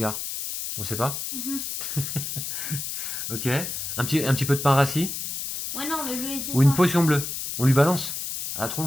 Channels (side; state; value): left; noise; hiss, 5 dB below the sound